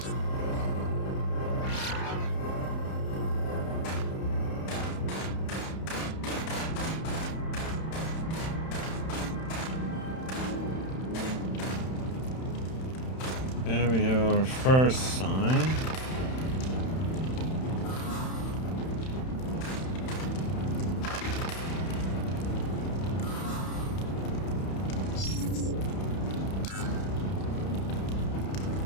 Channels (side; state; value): right; late; 31 ms